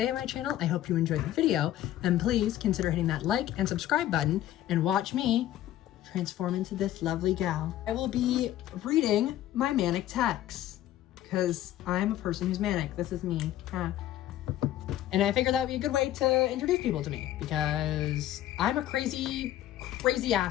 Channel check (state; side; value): quieter; right; 13.0 dB